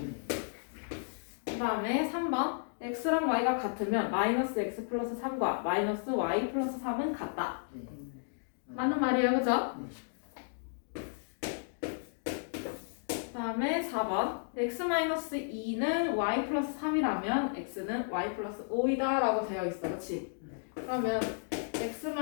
그다음에 3번. x랑 y가 같으면 마이너스 x 플러스 3과 마이너스 y 플러스 3은 같다. 네. 맞는 말이에요, 그죠? 네. 그다음에 4번. x-2는 y 플러스 3이라면 x는 y 플러스 5이다 라고 되어 있어, 그치? 그러면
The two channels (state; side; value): silent; right; digital silence